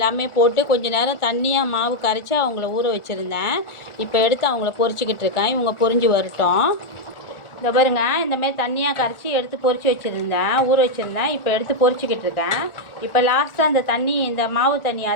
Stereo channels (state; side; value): late; right; 1.4 ms